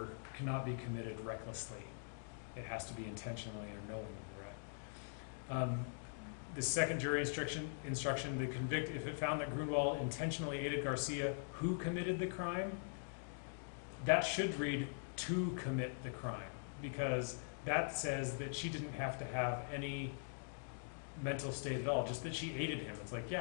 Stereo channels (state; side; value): silent; right; digital silence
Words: cannot be committed recklessly. It has to be intentionally or knowingly, right? The second jury instruction, the convict, if it found that Grunwald intentionally aided Garcia, who committed the crime, that should read to commit the crime, because that says that she didn't have to have any mental state at all, just that she aided him. It's like,